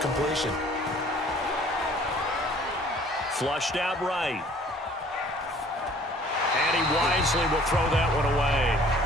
Flushed out right. And he wisely will throw that one away.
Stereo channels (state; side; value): normal; both; correlation 0.54